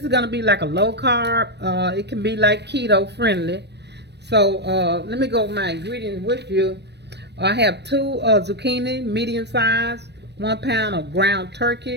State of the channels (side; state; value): left; late; 0.50 ms